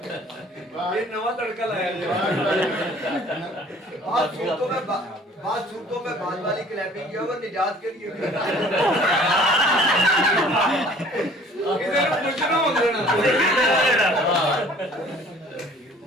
ये नवा तड़का लाया बात सूरतों में बाद वाली क्लैपिंग किया वो निजात के लिए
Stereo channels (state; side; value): normal; both; correlation 0.52